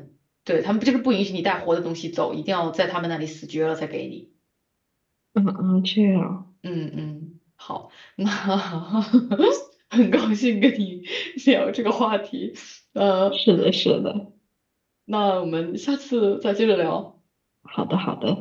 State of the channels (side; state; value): both; identical; correlation 1.00